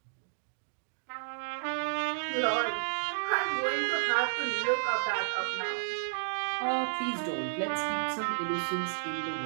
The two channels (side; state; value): left; silent; digital silence